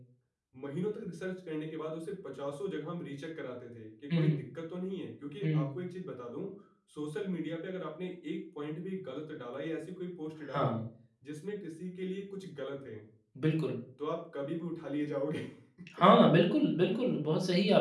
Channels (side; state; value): both; identical; correlation 1.00